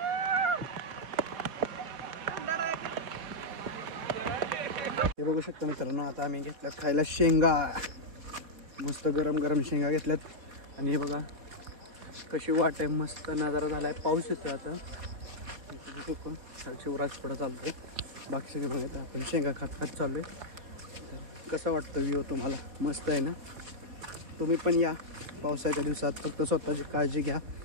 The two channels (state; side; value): late; left; 4.4 ms